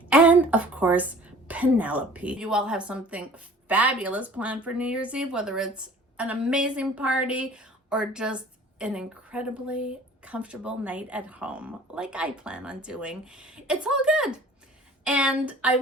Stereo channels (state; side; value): normal; both; correlation 0.48